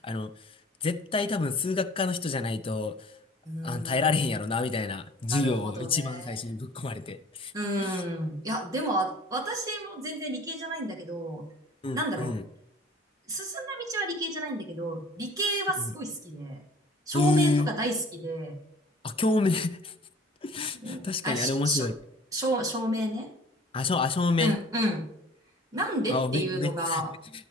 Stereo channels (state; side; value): normal; both; correlation 0.48